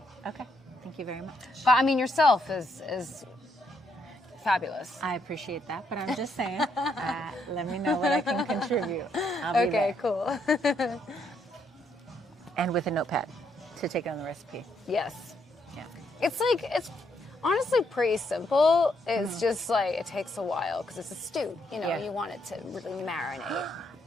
Okay. Thank you very much. But I mean, yourself is fabulous. I appreciate that, but I'm just saying, let me know what I can contribute. I'll be Okay, there. cool. And with a notepad to take on the recipe. Yes. Yeah. It's honestly pretty simple. It's just like, it takes a while because it's a stew. You know, Yeah. you want it to really marinate.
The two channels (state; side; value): normal; both; correlation 0.75